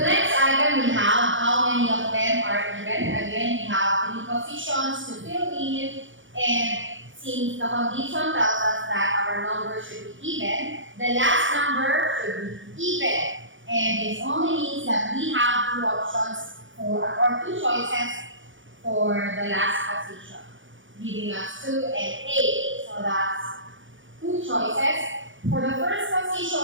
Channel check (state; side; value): late; left; 0.56 ms